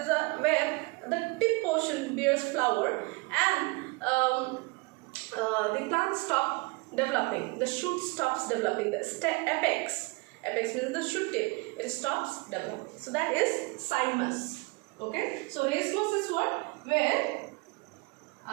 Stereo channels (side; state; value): left; quieter; 27.6 dB